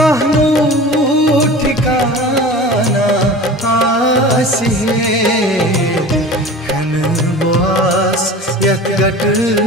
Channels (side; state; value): both; normal; correlation 0.37